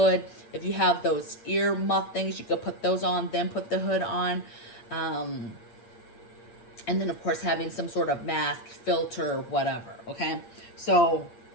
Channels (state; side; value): late; right; 8.7 ms